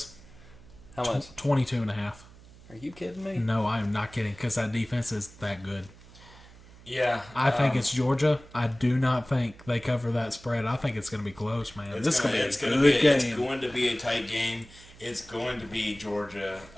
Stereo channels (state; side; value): noise; right; hum, 22 dB below the sound